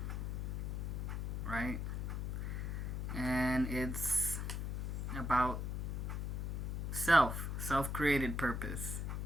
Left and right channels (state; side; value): noise; left; hum, 2 dB below the sound